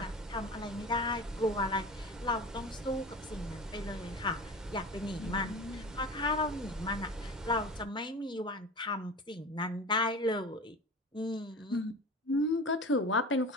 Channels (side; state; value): both; normal; correlation 0.34